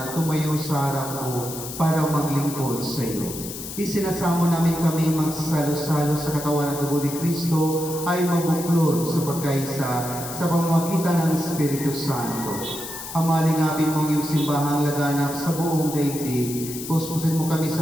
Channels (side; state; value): left; noise; hiss, 9 dB below the sound